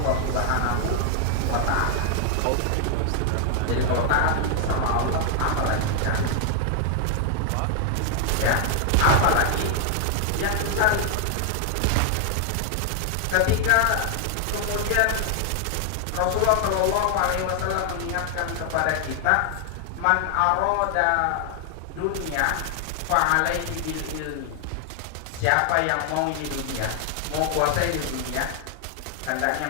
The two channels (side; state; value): both; different; correlation 0.00